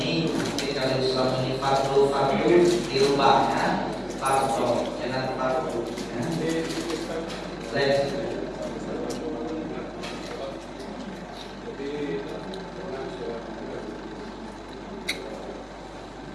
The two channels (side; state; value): both; identical; correlation 1.00